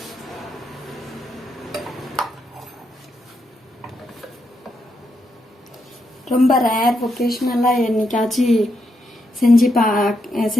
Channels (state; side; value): normal; both; correlation 0.81